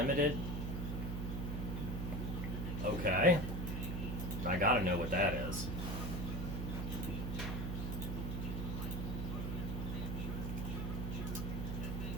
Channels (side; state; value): right; noise; hum, 2 dB below the sound